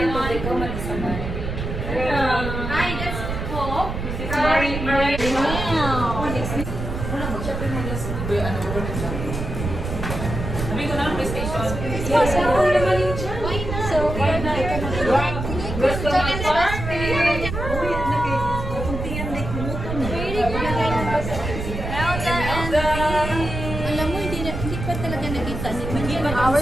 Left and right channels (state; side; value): noise; right; rumble, 5 dB below the sound